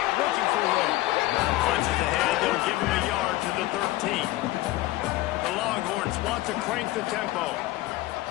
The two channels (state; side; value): quieter; right; 17.5 dB